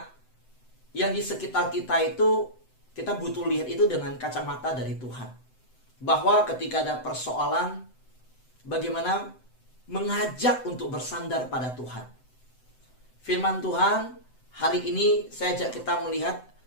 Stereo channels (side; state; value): right; late; 7.9 ms